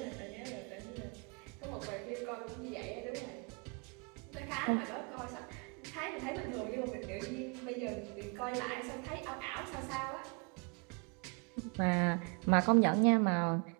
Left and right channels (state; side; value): quieter; left; 35.2 dB